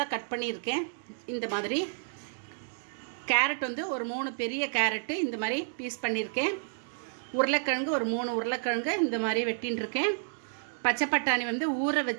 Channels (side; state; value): left; silent; digital silence